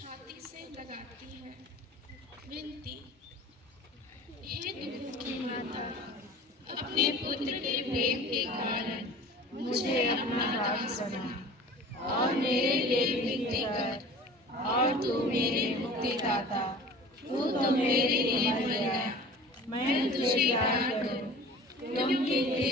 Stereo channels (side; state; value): both; normal; correlation 0.41